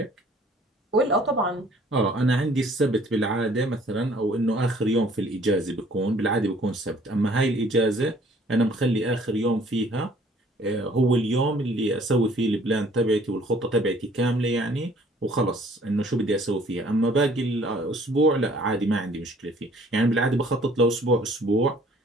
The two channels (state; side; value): normal; both; correlation 0.57